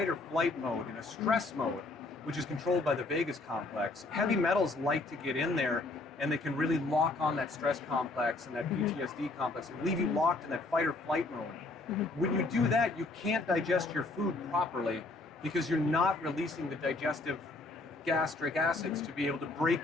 or flight mode, in a stress mode, which is controlled by the vagus complex, heavy metals like to get in there and they can really lock on that stress complex and that PTSD complex and leave you locked in that fight or flight mode. When you do that, you can't digest your food properly because you're not releasing the digestive gastric acids to be able to break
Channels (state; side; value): quieter; right; 3.2 dB